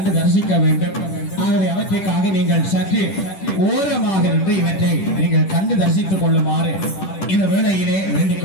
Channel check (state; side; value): late; right; 10 ms